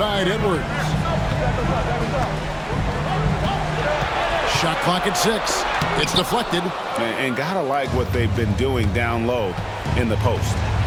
Edwards. Shot clock at 6. It's deflected. And gotta like what they've been doing down low in the post.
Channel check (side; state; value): both; identical; correlation 1.00